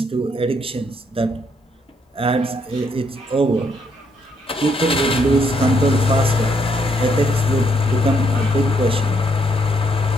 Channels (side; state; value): both; normal; correlation 0.73